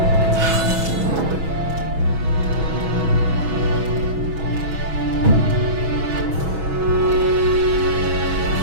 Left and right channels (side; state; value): left; late; 6.2 ms